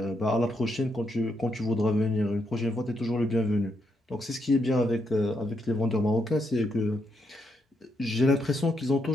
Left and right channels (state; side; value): normal; both; correlation 0.79